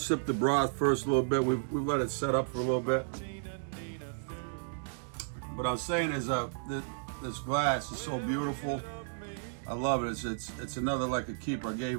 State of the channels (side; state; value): left; silent; digital silence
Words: the broth first a little bit. We've let it set up for a little bit. But I'm saying is this glass is so beautiful. I love it. It's another like a keeper. I